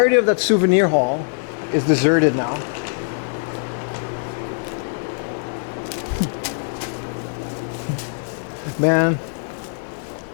of that souvenir hall is deserted now. Man,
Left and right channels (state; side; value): silent; right; digital silence